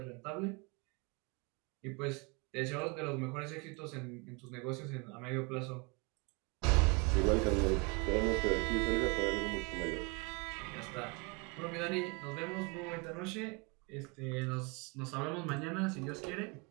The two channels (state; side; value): quieter; left; 30.0 dB